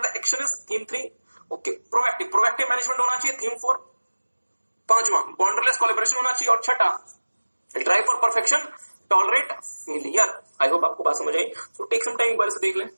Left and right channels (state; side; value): inverted; both; correlation -1.00